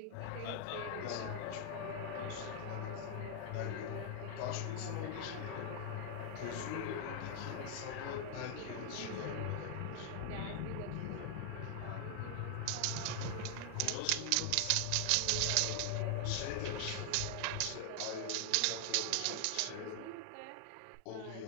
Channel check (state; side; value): different; both; correlation 0.00